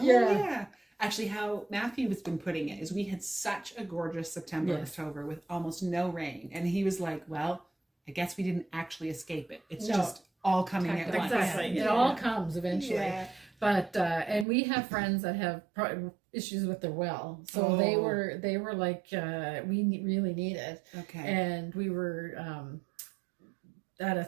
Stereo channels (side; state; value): left; drops out; at 14.5 s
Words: Yeah. yeah. Actually, how Matthew has been putting it is we had such a gorgeous September, Yes. October with almost no rain. And he was like, well, I guess we didn't actually escape it. It's No. just all coming at once. Exactly. Yeah. It all comes eventually. Yeah. But and we have friends that have issues with their well, so they Oh. were like really need it, Okay. and we were at a